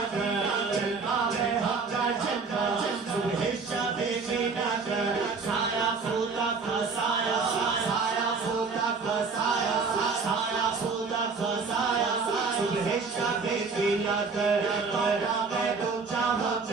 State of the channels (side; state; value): left; quieter; 4.7 dB